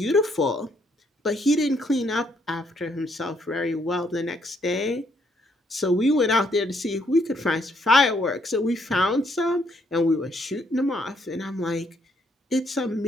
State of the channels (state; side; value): normal; both; correlation 0.71